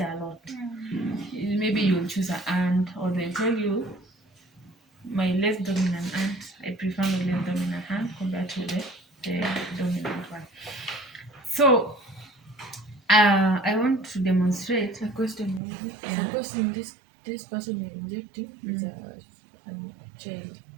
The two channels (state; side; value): drops out; left; at 15.6 s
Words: a lot. Maybe you'll choose an aunt, or they'll tell you, my less dominant aunt, I prefer my less dominant hand compared to the dominant one. So I want to demonstrate A question maybe. Suppose in this person you're injecting is a child.